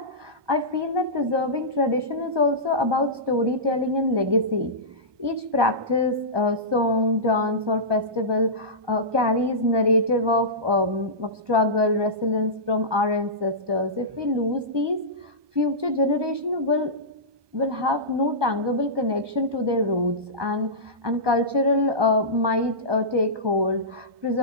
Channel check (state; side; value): late; left; 1.2 ms